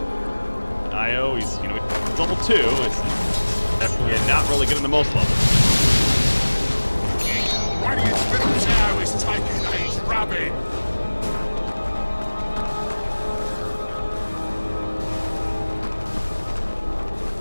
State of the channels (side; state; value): both; inverted; correlation -1.00